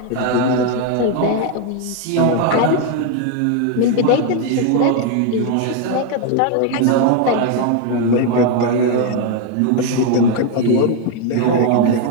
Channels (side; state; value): both; different; correlation 0.01